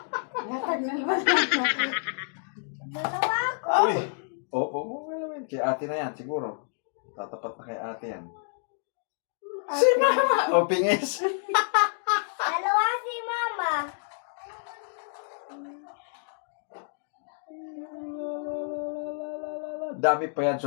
Natag na naman. Dalawa ako. Uy! Opo, naman. Kay ate na yan, siguro. Tatapat na kay ate yan. Si mama! O, pingis. Dalawa si mama. Dami pa yan,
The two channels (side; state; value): right; silent; 59 dB below the other